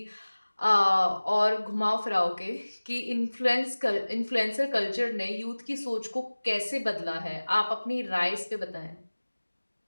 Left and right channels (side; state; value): both; inverted; correlation -1.00